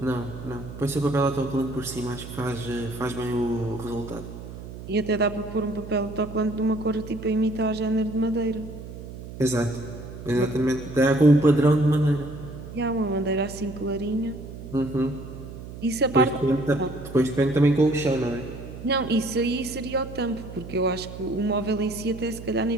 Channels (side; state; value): right; noise; hum, 12 dB below the sound